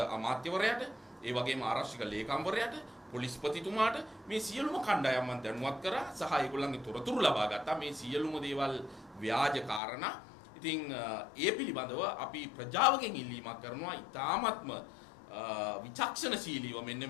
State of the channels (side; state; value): right; drops out; at 9.8 s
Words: අමාත්‍යවරයාට ඒ වගේම ආරක්ෂක ලේකම්වරයාට පොලිස්පතිතුමාට මේ සියලුම කණ්ඩායම් මන් දැනුවත් කරා සහ ඒගොල්ලන්ගේ තොරතුරු ලබා ගත්තා. මේ සියලුම දේවල් ව්‍යාජ කාරණා. ඉතින් ඒ පිළිබඳව අපි ප්‍රජාවගෙන් ඉල්ලීමක් කරනවා ඉතාමත්ම විචක්ෂණශීලීව මෙන්න